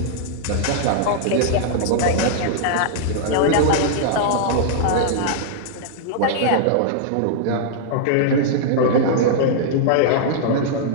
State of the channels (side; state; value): both; different; correlation -0.01